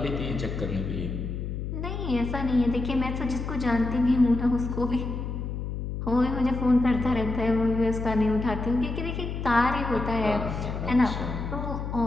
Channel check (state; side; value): noise; left; hum, 5 dB below the sound